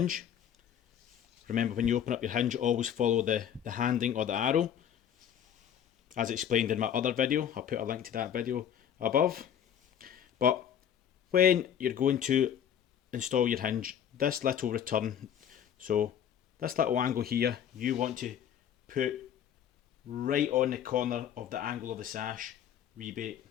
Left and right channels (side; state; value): right; quieter; 9.4 dB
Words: remember when you open up your hinge always follow the handing or the arrow, as explained in my other video. I'll put a link to that video above. But when you're going to install your hinge, this little return, so this little angle here, you want to put right on the corner of the angle of the sash rebate.